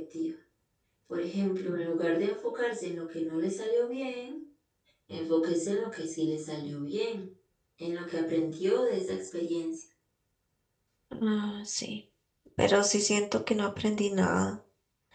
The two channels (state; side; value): identical; both; correlation 1.00